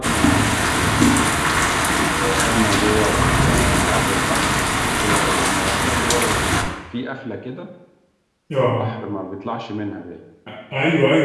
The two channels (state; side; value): identical; both; correlation 1.00